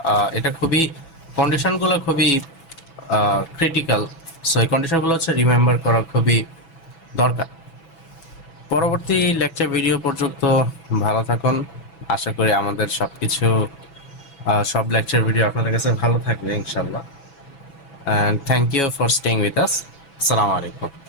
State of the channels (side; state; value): right; late; 6.0 ms